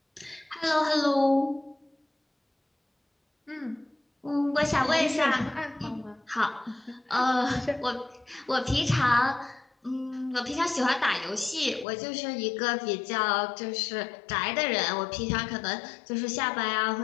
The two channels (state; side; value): drops out; right; at 11.9 s